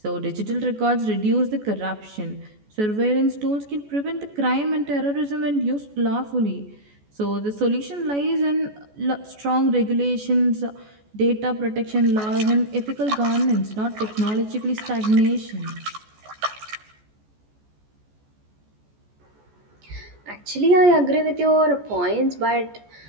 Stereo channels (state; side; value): late; left; 14 ms